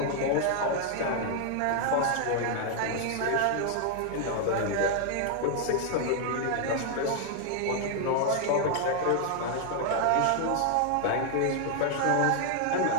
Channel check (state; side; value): different; both; correlation 0.00